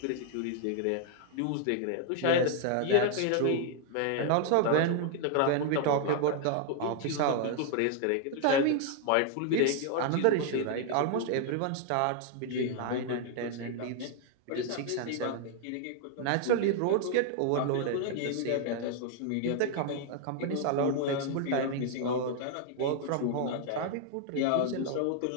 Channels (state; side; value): different; both; correlation 0.00